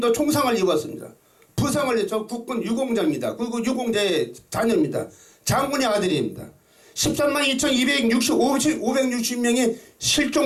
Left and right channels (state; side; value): identical; both; correlation 1.00